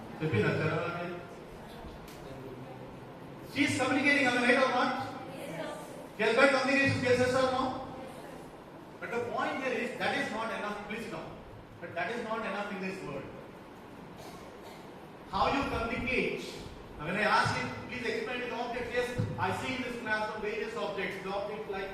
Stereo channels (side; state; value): both; identical; correlation 1.00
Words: చెప్పిందా చరవాణి she is communicating on the right or not? She has got communication skills, yes or no? But the point here is that is not enough. Please no. But that is not enough in this world. How you communicate? Now when I ask you, please explain the objects. Yes, I see in this class some various objects. The objects like